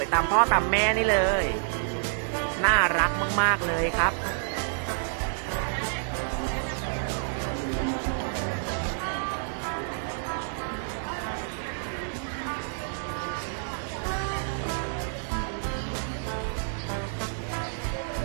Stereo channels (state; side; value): silent; left; 59 dB below the other